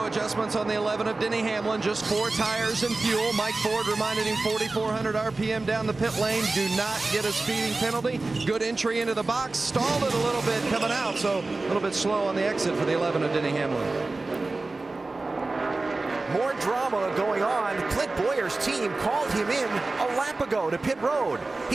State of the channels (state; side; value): quieter; left; 3.3 dB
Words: adjustments on the 11 of Denny Hamlin, just 4 tires and fuel. Mike Ford reminded him 4,400 RPM down the pit lane. Do not get a speeding penalty. Good entry into the box. Stalled it a little bit coming out, so a little bit slow on the exit for the 11 of Denny Hamlin. More drama going on. Clint Boyer's team called him in a lap ago to pit road.